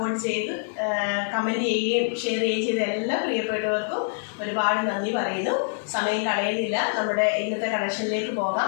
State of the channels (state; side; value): silent; right; digital silence